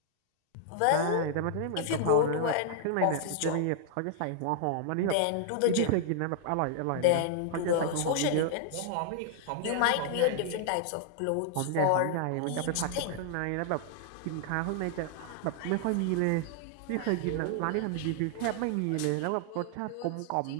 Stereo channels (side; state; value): both; different; correlation -0.01